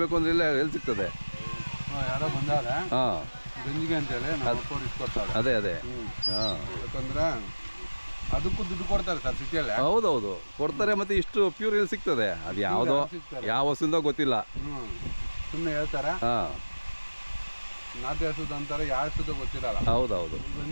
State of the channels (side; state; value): both; inverted; correlation -1.00